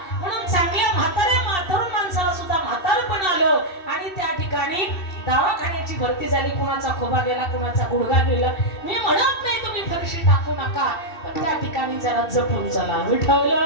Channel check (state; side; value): late; right; 2.7 ms